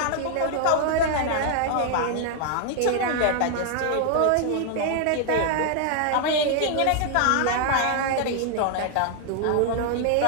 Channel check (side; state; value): both; different; correlation 0.00